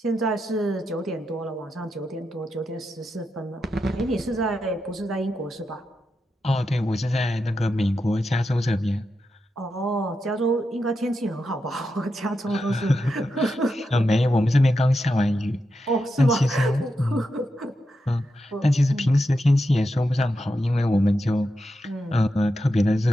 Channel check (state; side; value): normal; both; correlation 0.87